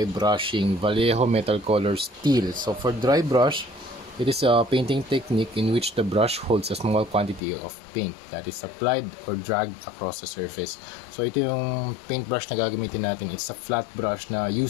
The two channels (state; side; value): drops out; right; at 7.4 s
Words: brushing, Vallejo Metal Color Steel. So for dry brush, it is a painting technique in which the brush holds a small quantity of paint that is applied or dragged across the surface. So ito yung paintbrush na gagamitin natin. It's a flat brush na